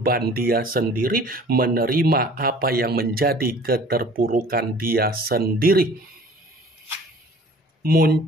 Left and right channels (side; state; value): both; normal; correlation 0.49